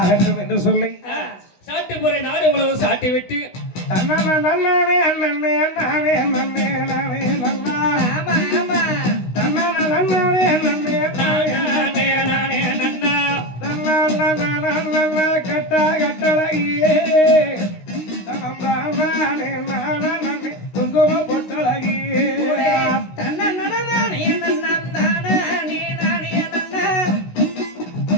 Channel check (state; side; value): late; right; 16 ms